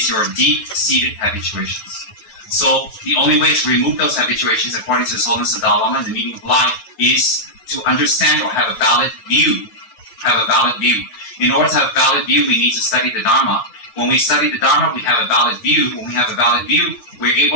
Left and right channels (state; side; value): late; right; 8.8 ms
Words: your deep-seated habituations. So the only way to remove those habituations, according to His Holiness the Dalai Lama and the meaning of life, is to understand or have a valid view. In order to have a valid view, we need to study the Dharma. When we study the Dharma, we have a valid view. When we have a valid view, we're